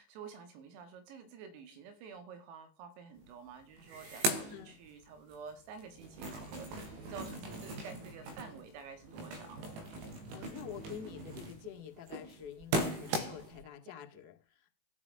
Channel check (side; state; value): left; late; 19 ms